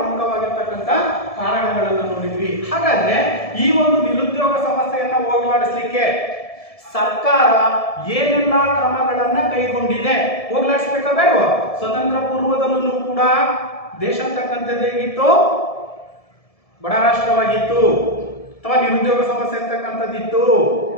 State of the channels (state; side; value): late; right; 1.7 ms